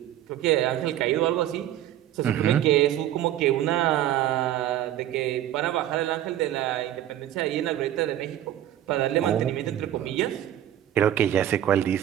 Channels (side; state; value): left; quieter; 12.2 dB